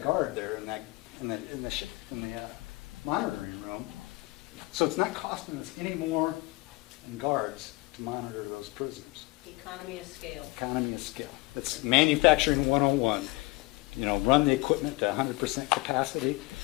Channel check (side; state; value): right; quieter; 22.8 dB